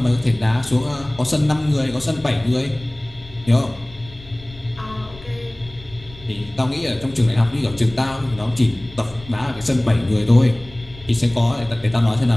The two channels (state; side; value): noise; left; rumble, 20 dB below the sound